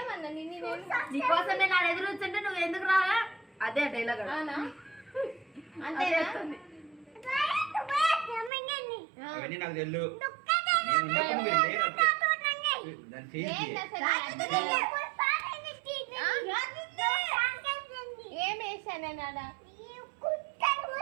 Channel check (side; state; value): left; drops out; at 8.5 s